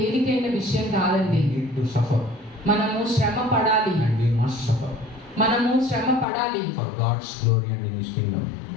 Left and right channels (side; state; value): right; drops out; at 6.2 s